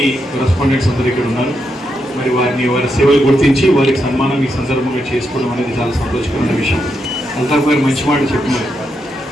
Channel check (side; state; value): both; normal; correlation 0.83